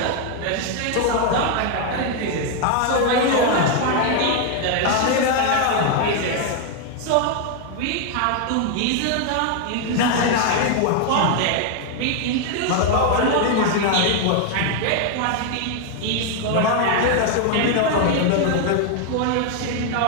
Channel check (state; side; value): different; both; correlation 0.00